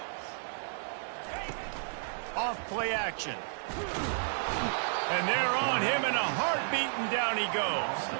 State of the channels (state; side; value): silent; left; digital silence